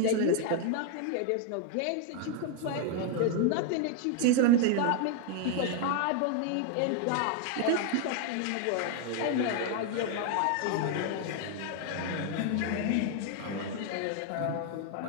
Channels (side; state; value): both; different; correlation 0.00